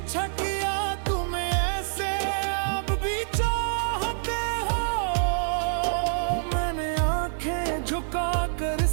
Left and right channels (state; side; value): silent; left; digital silence